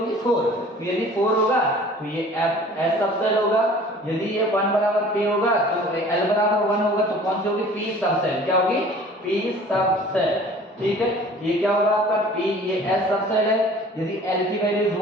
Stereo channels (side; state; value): both; normal; correlation 0.48